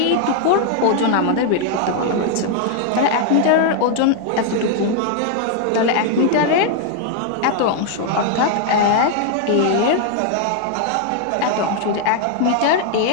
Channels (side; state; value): both; different; correlation 0.00